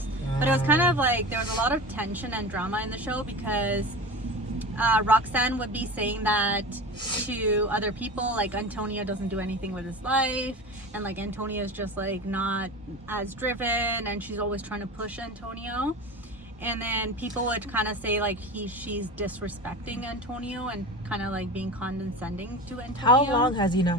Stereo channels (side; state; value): both; normal; correlation 0.30